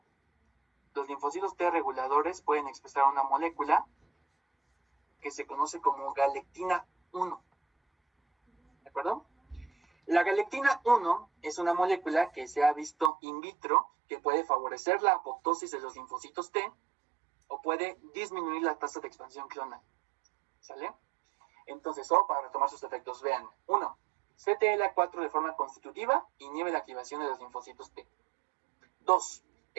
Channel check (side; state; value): left; drops out; at 13.1 s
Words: Los linfocitos T reguladores pueden expresar una molécula que se conoce como galectina 1. ¿De acuerdo? La galectina 1 es una molécula que se ha visto in vitro que puede favorecer la apoptosis de los linfocitos T o puede disminuir la tasa de expansión clonal. ¿Sale? Entonces, para retomar sus efectos, vean. 1. CTLA4 de forma constitutiva inhibe la activación de los linfocitos T. 2.